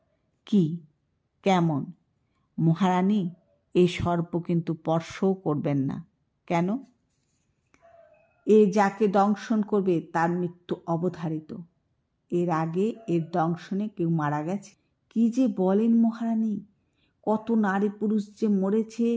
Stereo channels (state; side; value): identical; both; correlation 1.00